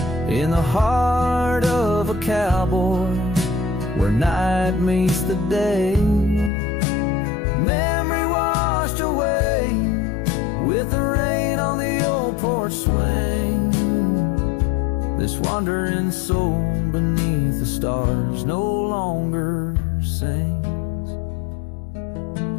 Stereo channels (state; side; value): drops out; right; at 6.5 s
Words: In the heart of a cowboy, where night meets the day. Memory washed away with the rain on the old porch swing. This wandering soul beneath the stars no longer sings.